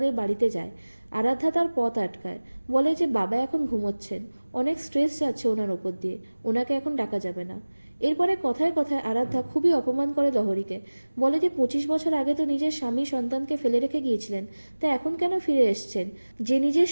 বাড়িতে যায়। আরাধ্যা তার পথ আটকায়, বলে যে বাবা এখন ঘুমোচ্ছেন, অনেক স্ট্রেস যাচ্ছে ওনার ওপর দিয়ে, ওনাকে এখন ডাকা যাবে না। এরপরে কথায় কথায় আরাধ্যা খুবই অপমান করে লহরীকে, বলে যে 25 বছর আগে তো নিজের স্বামী সন্তানকে ফেলে রেখে গিয়েছিলেন, তা এখন কেন ফিরে এসছেন? যে নিজের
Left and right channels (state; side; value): inverted; both; correlation -1.00